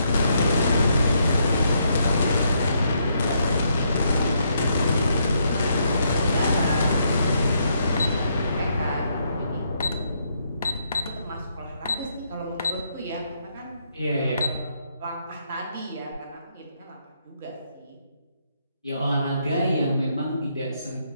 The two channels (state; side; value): inverted; both; correlation -0.75